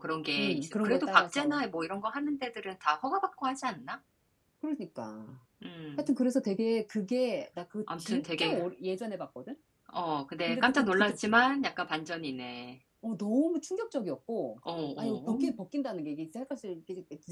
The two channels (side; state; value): both; identical; correlation 1.00